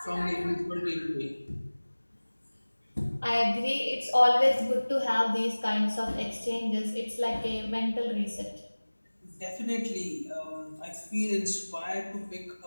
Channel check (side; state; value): both; inverted; correlation -1.00